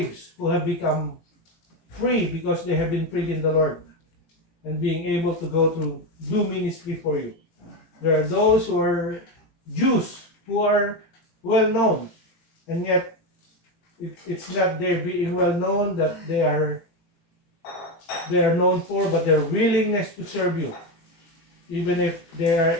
who have become free because they have been freed in the Lord and being able to go to do ministry for you. There are those who are Jews who are well known, and yet it's not their being well known that they are known for, but their willingness to serve you, even if they are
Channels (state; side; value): late; right; 18 ms